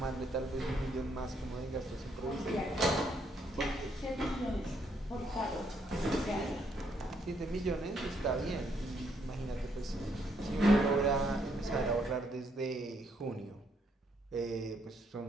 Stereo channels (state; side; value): normal; both; correlation 0.72